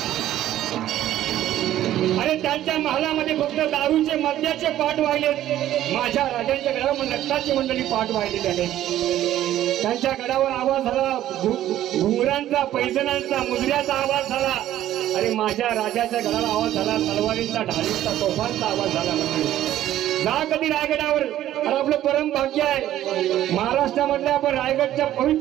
आणि त्यांच्या महालामध्ये फक्त दारूचे मद्याचे पाठ वाहिले. माझ्या राजांच्या गडावर नक्ताची मंडळी पाठ वाहिले. त्याने त्यांच्या गडावर आवाज झाला घुंगरांचा, पैजणांचा, मुजऱ्याचा आवाज झाला. आणि माझ्या राजाच्या गडाला आवाज झाला तलवारींचा, ढालींचा, तोफांचा आवाज झाला. जा कधी रायगडावर. आणि आपलं परम भाग्य आहे महाराष्ट्रामधल्या, आपण रायगडच्या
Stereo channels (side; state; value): left; quieter; 12.9 dB